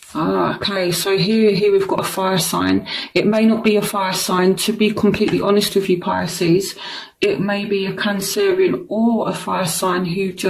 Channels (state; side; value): identical; both; correlation 1.00